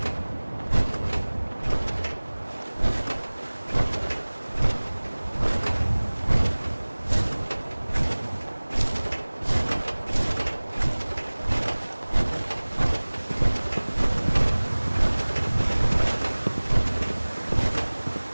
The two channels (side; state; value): both; inverted; correlation -1.00